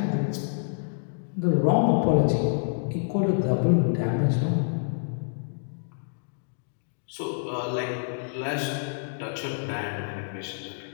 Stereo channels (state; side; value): silent; right; digital silence